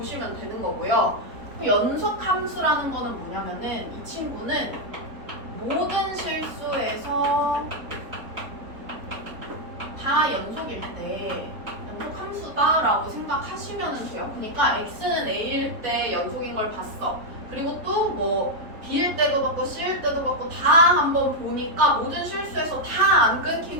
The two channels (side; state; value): left; late; 3.9 ms